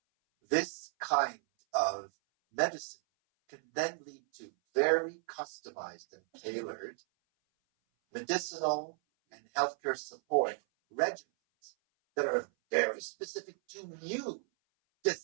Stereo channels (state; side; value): silent; left; 55 dB below the other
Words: this kind of medicine can then lead to very customized and tailored medicinal and healthcare support regimens that are very specific to you.